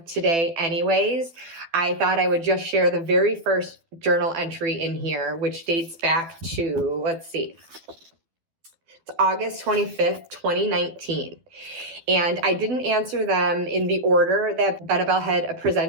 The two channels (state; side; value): late; left; 12 ms